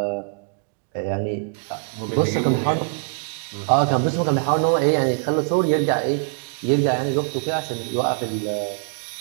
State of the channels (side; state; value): left; silent; digital silence